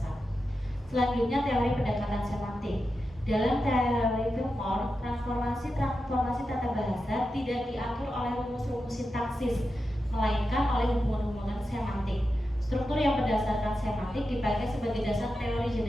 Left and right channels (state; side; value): normal; both; correlation 0.90